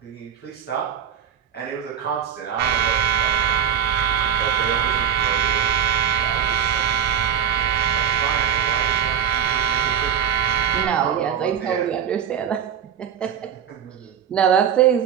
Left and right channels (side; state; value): left; quieter; 8.4 dB